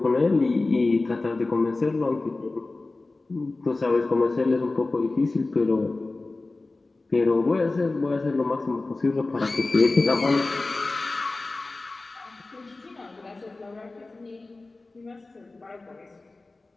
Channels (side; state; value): right; quieter; 3.3 dB